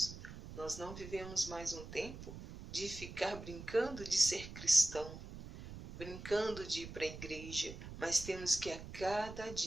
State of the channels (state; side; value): noise; right; rumble, 12 dB below the sound